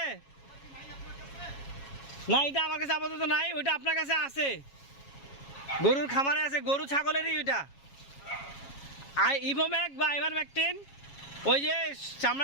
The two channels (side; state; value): right; late; 7.3 ms